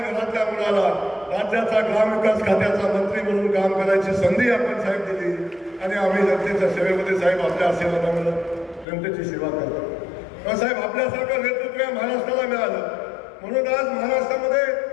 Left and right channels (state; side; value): drops out; right; at 8.8 s